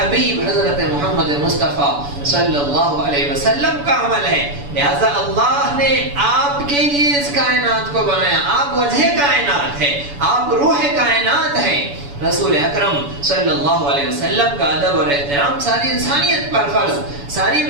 حضرت محمد مصطفیٰ صلی اللہ علیہ وسلم کا عمل ہے. لہذا اللہ نے آپ کے لیے اس کائنات کو بنایا. آپ وجہ کائنات ہے, آپ روح کائنات ہیں. رسول اکرم صلی اللہ علیہ وسلم کا ادب اور احترام ساری انسانیت پر فرض, ساری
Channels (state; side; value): late; left; 7.0 ms